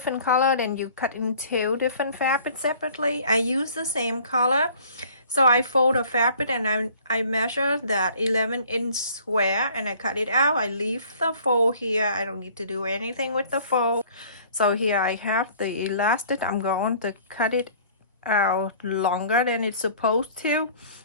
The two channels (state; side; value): inverted; both; correlation -0.52